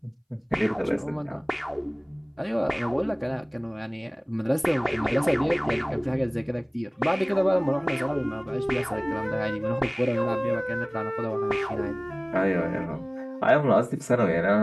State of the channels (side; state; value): both; identical; correlation 1.00